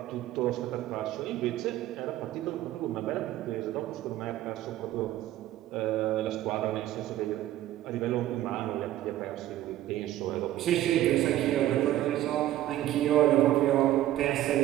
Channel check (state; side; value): quieter; left; 13.8 dB